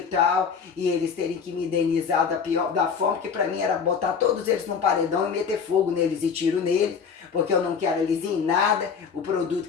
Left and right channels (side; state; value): right; quieter; 6.2 dB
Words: tal, e eles terem que me indenizar da forma que para mim era botar todos eles num paredão e meter fogo neles e tiro neles, porque eu não quero eles em nada, o produto